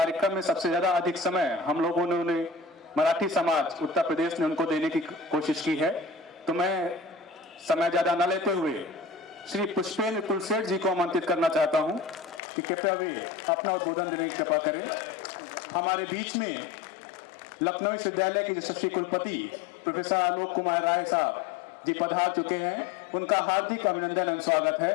में सबसे ज्यादा अधिक समय हम लोगों ने उन्हें मराठी समाज उत्तर प्रदेश ने उनको देने की कोशिश की है। तो मैं समय ज्यादा न लेते हुए श्री पुष्पेंद्र कुलसेठ जी को आमंत्रित करना चाहता हूं कि कृपया वे अपना उद्बोधन देने की कृपा करें। हमारे बीच में लखनऊ विश्वविद्यालय के यशस्वी कुलपति प्रोफेसर आलोक कुमार राय साहब जी पधार चुके हैं, उनका हार्दिक अभिनंदन एवं स्वागत है।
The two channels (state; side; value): drops out; right; at 12.4 s